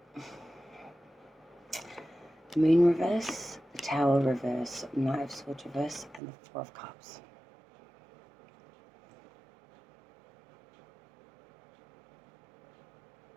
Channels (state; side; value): drops out; left; at 6.2 s